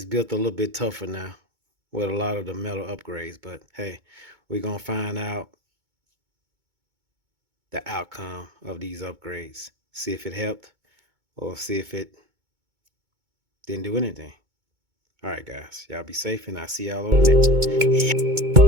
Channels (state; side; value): late; left; 2.2 ms